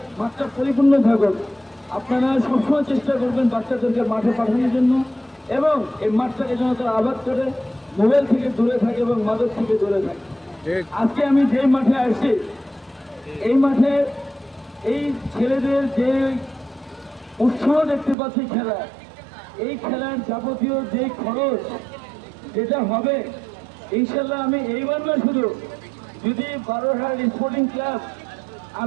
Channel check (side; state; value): left; drops out; at 18.2 s